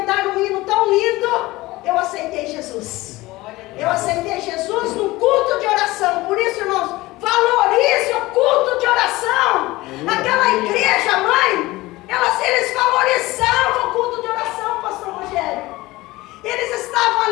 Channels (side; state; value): right; quieter; 19.6 dB